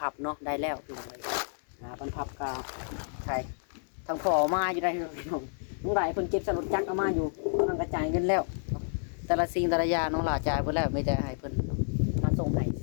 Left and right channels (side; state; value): right; silent; digital silence